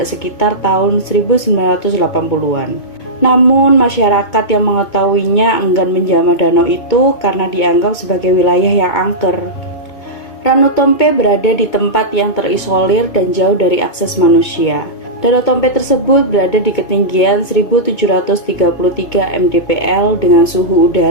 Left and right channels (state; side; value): late; right; 2.2 ms